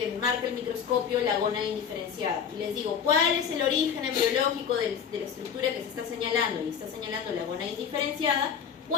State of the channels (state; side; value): quieter; right; 7.5 dB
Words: marca el microscopio la gónada indiferenciada y les digo, ¿cuál es el origen embriológico de la estructura que se está señalando? Y está señalando la gónada indiferenciada,